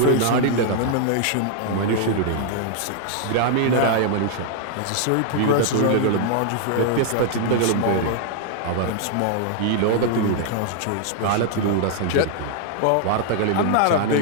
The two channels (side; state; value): both; different; correlation 0.00